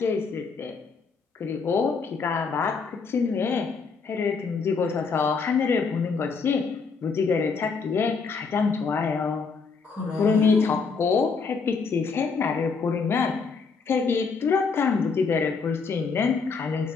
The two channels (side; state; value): right; quieter; 5.0 dB